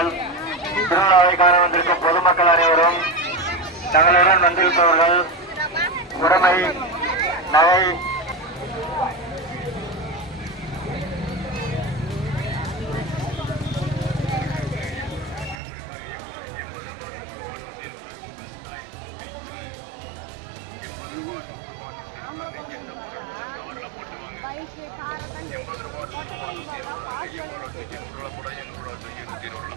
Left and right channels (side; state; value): left; drops out; at 15.6 s